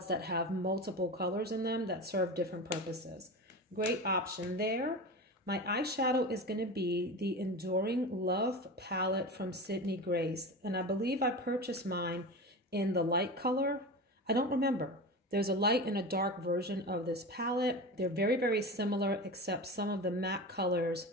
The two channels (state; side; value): normal; both; correlation 0.27